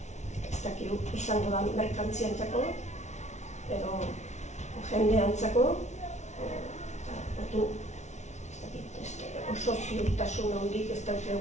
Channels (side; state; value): right; late; 0.33 ms